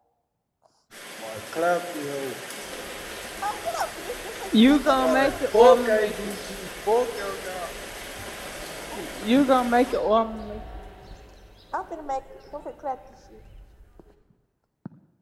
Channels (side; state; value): both; identical; correlation 1.00